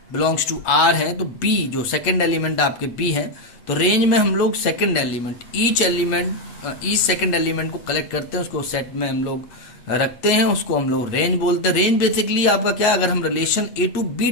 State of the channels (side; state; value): right; late; 8.4 ms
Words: belongs to R है, तो b जो सेकेंड एलिमेंट आपके b है, तो रेंज में हम लोग second element each second element को कलेक्ट करते हैं, उसको सेट में हम लोग रखते हैं, उसको हम लोग रेंज बोलते हैं। रेंज बेसिकली आपका क्या, अगर हम relation A to B